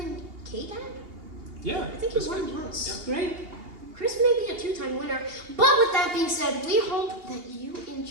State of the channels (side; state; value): left; late; 2.8 ms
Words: K-Dan. Yeah. I think that's you won good. once. Great. Chris may be a 2-time winner. But with that being said, we hope that you